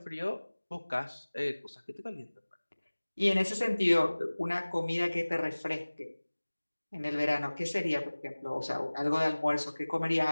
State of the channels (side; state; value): both; inverted; correlation -1.00